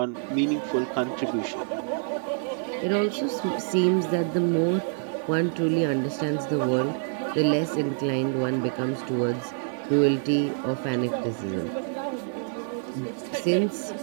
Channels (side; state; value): left; silent; digital silence